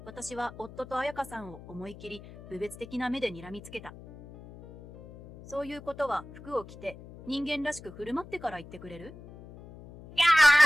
私は夫と彩香さんを思い切り、侮蔑的な目で睨みつけた。そういうことは服を着て、人間らしく振る舞ってから言ってくれる？や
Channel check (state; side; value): noise; left; hum, 17 dB below the sound